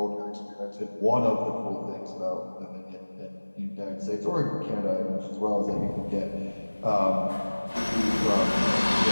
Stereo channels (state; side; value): inverted; both; correlation -1.00